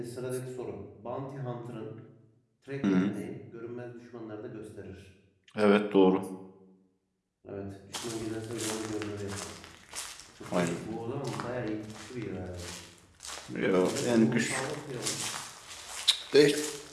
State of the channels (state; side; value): identical; both; correlation 1.00